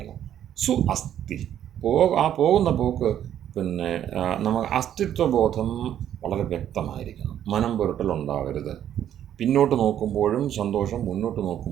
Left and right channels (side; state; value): left; quieter; 10.5 dB